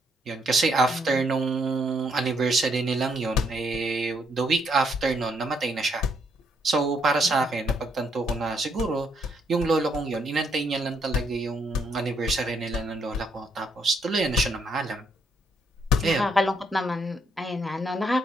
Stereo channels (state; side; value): normal; both; correlation 0.72